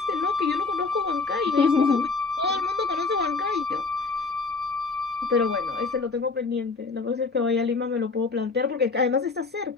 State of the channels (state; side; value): quieter; right; 4.2 dB